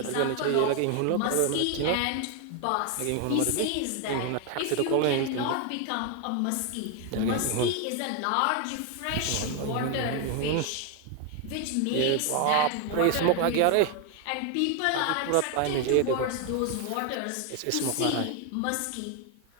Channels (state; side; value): different; both; correlation 0.01